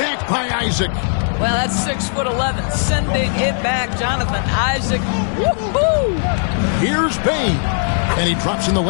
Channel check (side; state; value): right; silent; 67 dB below the other